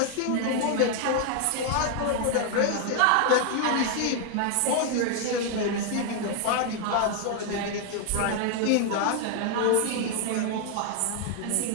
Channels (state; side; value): different; both; correlation 0.00